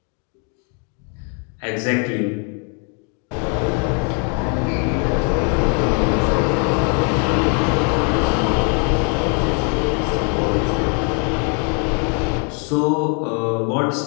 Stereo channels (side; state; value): right; quieter; 38.8 dB